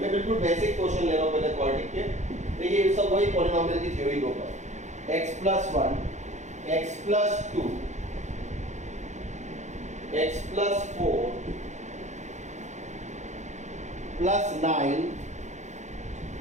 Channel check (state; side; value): late; left; 0.34 ms